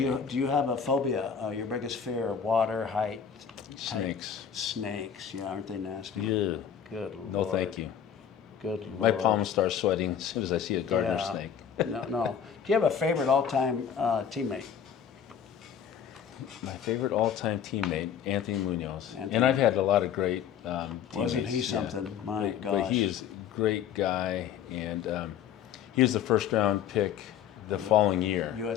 you have a phobia? Your biggest fear? Water, height? Snakes. Snakes. Yeah, aren't they nasty? Yeah. Good Lord. No, thank you. Good Lord. My palms start sweating as soon as I see a garter Yeah. snake. No. Do you have a favorite all-time teammate? My favorite all-time teammate, Anthony Munoz. Anthony. And I've had a lot of great teammates. Wasn't he yeah. something? My gosh. But he is a great guy, and he was the first-round pick the following year.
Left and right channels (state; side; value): quieter; right; 8.3 dB